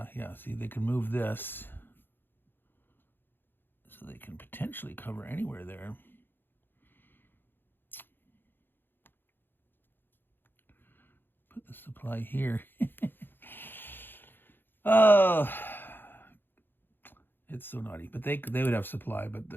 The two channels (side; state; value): right; late; 0.098 ms